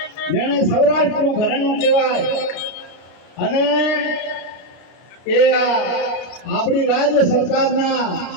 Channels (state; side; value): late; right; 33 ms